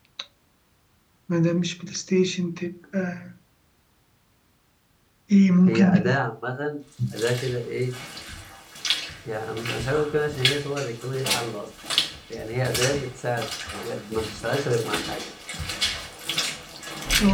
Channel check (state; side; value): identical; both; correlation 1.00